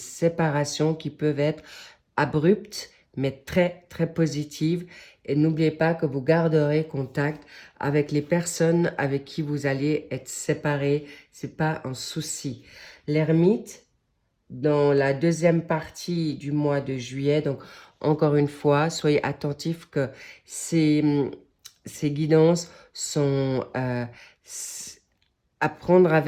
qui peuvent être abruptes, mais très, très positives. Et n'oubliez pas que vous garderez contact avec les personnes avec qui vous allez être séparés. Ce n'est pas un souci. L'ermite, dans la deuxième partie du mois de juillet, donc encore une fois, soyez attentifs que ces guidances sont à prendre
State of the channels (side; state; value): both; identical; correlation 1.00